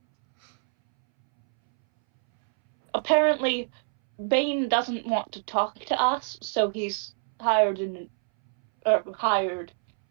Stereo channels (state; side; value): silent; left; 61 dB below the other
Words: Apparently, Bain doesn't want to talk to us, so he's hired